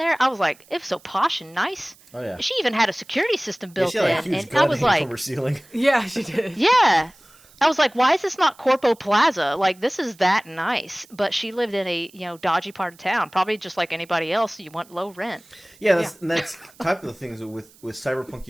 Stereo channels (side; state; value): right; noise; hiss, 27 dB below the sound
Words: I was like, it's so posh and nice. Oh, yeah. She even had a security system built in. Like, and I was like, from her ceiling. Yeah, she did. Yeah. I was like, why is this not Corpo Plaza? Like, this is that nice. But she lived in a, dodgy part of town. Probably just like anybody else, you want low rent. Yeah, and that's type of the things with Cyberpunk